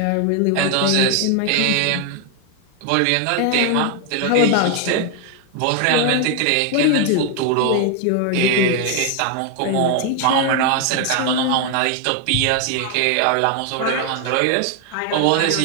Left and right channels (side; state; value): both; different; correlation 0.01